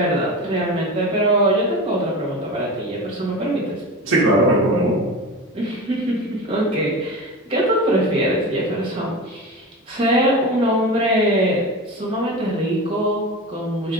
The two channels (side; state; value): both; normal; correlation 0.28